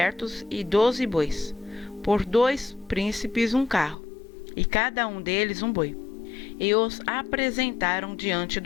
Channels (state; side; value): drops out; right; at 4.0 s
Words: e 12 bois, por 2 príncipes um carro, e cada um deles um boi. E os apresentaram diante